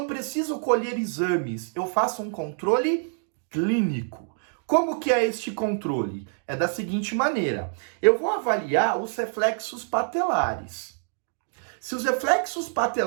preciso colher exames, eu faço um controle clínico. Como que é este controle? É da seguinte maneira: eu vou avaliar os reflexos patelares. Se os reflexos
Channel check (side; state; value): left; silent; digital silence